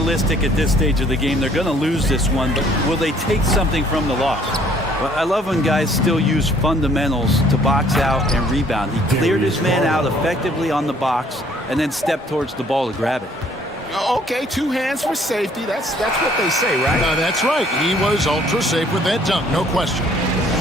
at this stage of the game, they're going to lose this one, but will they take something from the loss? Well, I love when guys still use fundamentals to box out and rebound. He cleared his man out effectively on the box and then stepped towards the ball to grab it. Okay, 2 hands for safety. That's what they say, right? That's right. He was ultra safe with that dunk, no question.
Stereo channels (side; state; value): both; normal; correlation 0.60